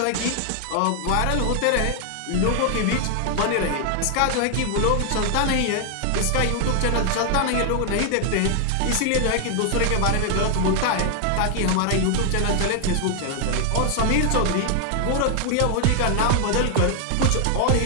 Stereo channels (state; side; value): different; both; correlation 0.00